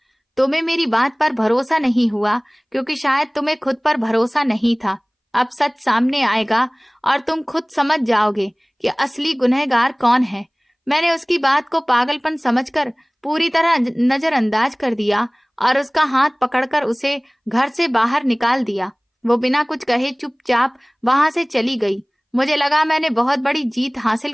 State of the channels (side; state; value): both; identical; correlation 1.00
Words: तुम्हें मेरी बात पर भरोसा नहीं हुआ क्योंकि शायद तुम्हें खुद पर भरोसा नहीं था। अब सच सामने आएगा और तुम खुद समझ जाओगे कि असली गुनहगार कौन है। मैंने उसकी बात को पागलपन समझकर पूरी तरह नजरअंदाज कर दिया और उसका हाथ पकड़कर उसे घर से बाहर निकाल दिया। वो बिना कुछ कहे चुपचाप वहां से चली गई। मुझे लगा मैंने बहुत बड़ी जीत हासिल